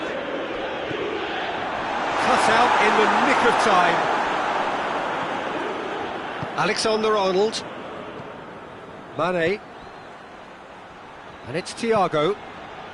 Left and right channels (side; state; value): both; identical; correlation 1.00